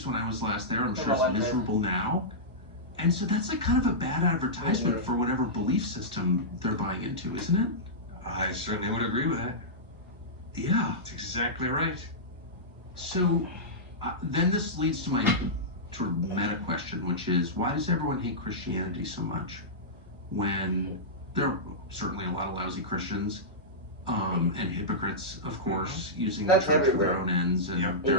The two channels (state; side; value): normal; both; correlation -0.14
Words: when I was last there. I'm sure it's miserable now. And so that's like kind of a bad advertisement for whatever belief system they're buying into, isn't it? I certainly would agree with that. Yeah. That's exactly right. So then this leads to my sort of meta question, which is, why does everyone hate Christianity so much? When there are certainly a lot of lousy Christians, and hypocrites, of course, using the church for their own ends, and